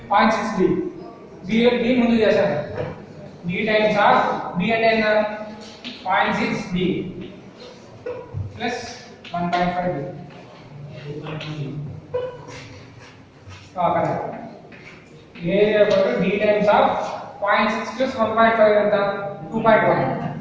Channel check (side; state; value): both; identical; correlation 1.00